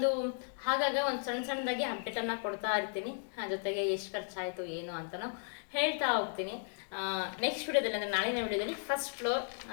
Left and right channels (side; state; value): right; silent; 54 dB below the other